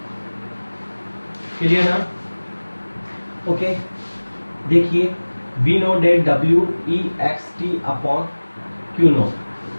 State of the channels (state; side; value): inverted; both; correlation -1.00